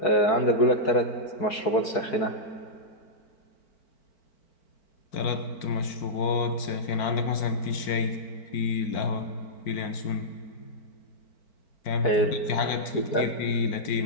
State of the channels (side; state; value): right; late; 4.5 ms